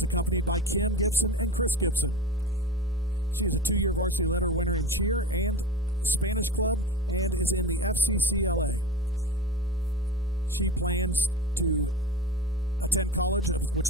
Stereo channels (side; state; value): both; normal; correlation 0.31